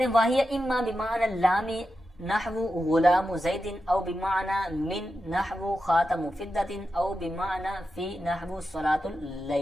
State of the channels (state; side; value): normal; both; correlation 0.90